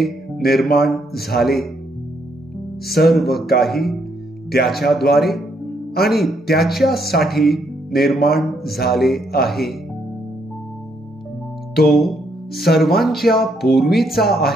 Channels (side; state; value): both; normal; correlation 0.74